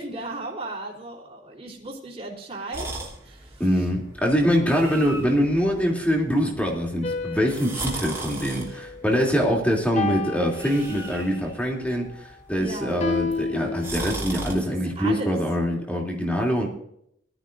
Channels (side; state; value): both; normal; correlation 0.73